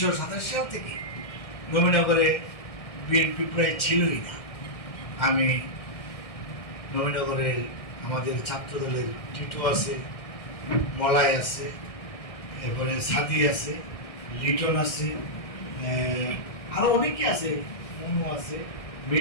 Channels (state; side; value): late; right; 1.6 ms